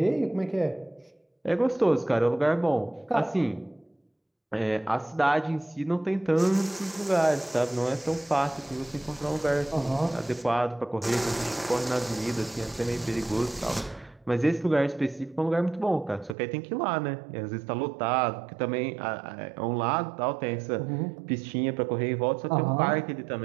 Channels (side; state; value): left; drops out; at 16.4 s